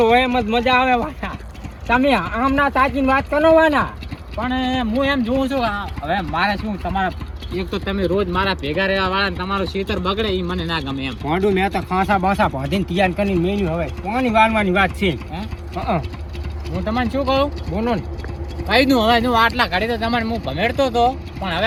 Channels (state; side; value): identical; both; correlation 1.00